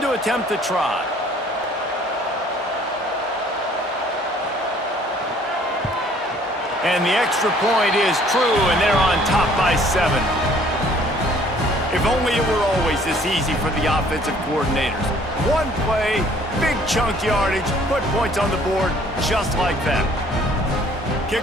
to attempt the try. And the extra point is true, and they're on top by 7. If only it were always this easy for the offensive coordinators. One play, big chunk yardage, put points on the board just like that.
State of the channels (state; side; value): normal; both; correlation 0.58